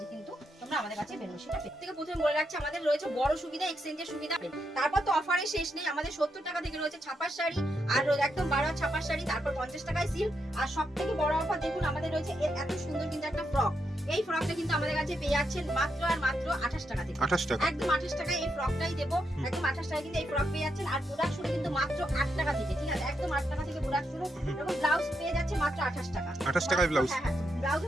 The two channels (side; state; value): both; normal; correlation 0.82